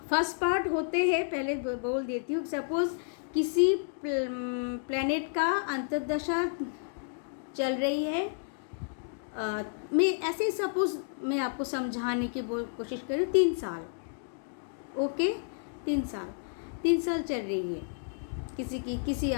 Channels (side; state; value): right; silent; digital silence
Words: फर्स्ट पार्ट होते हैं, पहले बोल देती हूँ, सपोज किसी प्लैनेट का अंतर्दशा चल रही है, मैं ऐसे ही सपोज मैं आपको समझाने की कोशिश करूँ, 3 साल, ओके, 3 साल चल रही है